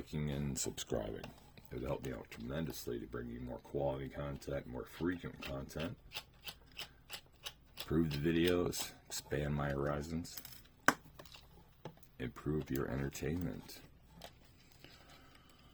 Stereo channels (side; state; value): both; identical; correlation 1.00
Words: and subscribing. It would help me out tremendously to bring you more quality content, more frequent content. Improve the videos, expand my horizons, improve your entertainment.